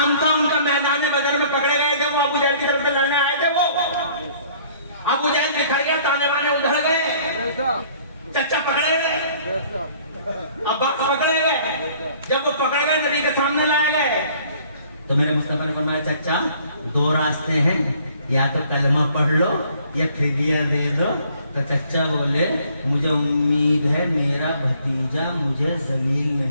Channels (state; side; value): inverted; both; correlation -0.57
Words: था उनका, मैदान बदर में पकड़े गए थे, वो अबू जहल की तरफ से लड़ने आए थे। वो अबू जहल बिखर गया, ताने बाने उधड़ गए, चचा पकड़े गए, अब्बास पकड़े गए। जब वो पकड़ गए नबी के सामने लाए गए تو میرے مصطفیٰ نے فرمایا چچا دو راستے ہیں, یا تو کلمہ پڑھ لو یا فدیہ دے دو. تو چچا بولے مجھے امید ہے میرا بھتیجا مجھے ذلیل